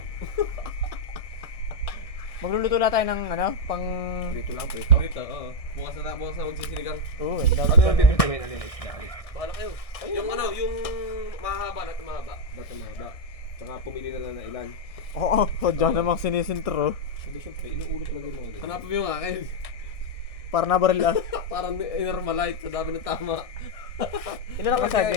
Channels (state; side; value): late; right; 1.6 ms